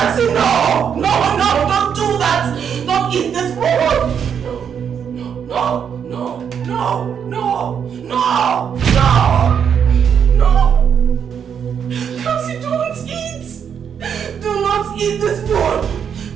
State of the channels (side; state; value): left; quieter; 7.7 dB